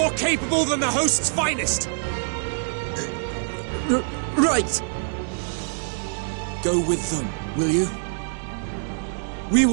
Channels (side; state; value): left; silent; digital silence